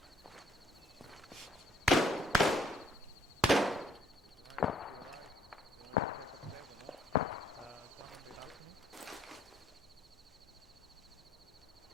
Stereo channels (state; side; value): normal; both; correlation 0.65